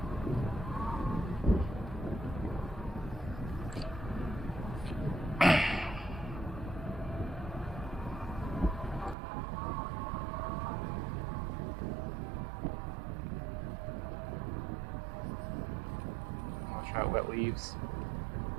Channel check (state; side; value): drops out; left; at 9.2 s